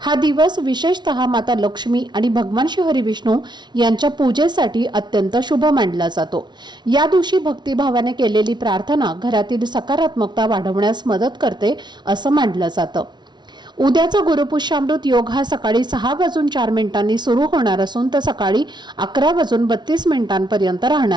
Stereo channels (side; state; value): left; late; 0.21 ms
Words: दिवस विशेषतः माता लक्ष्मी आणि भगवान श्री हरी विष्णू यांच्या पूजेसाठी अत्यंत शुभ मानला जातो. या दिवशी भक्तिभावाने केलेली प्रार्थना घरातील सकारात्मकता वाढवण्यास मदत करते असं मानलं जातं. उद्याचा गुरुपुष्यामृत योग हा सकाळी 6:04 सुरू होणार असून तो सकाळी 11:32